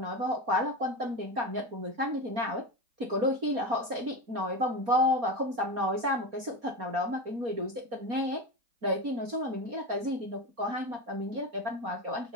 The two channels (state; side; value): late; left; 4.3 ms